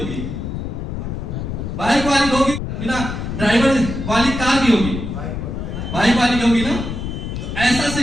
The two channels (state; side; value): noise; left; rumble, 5 dB below the sound